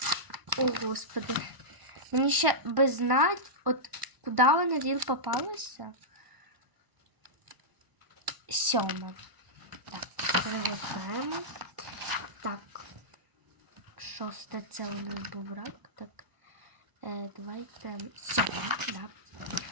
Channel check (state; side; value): late; left; 1.0 ms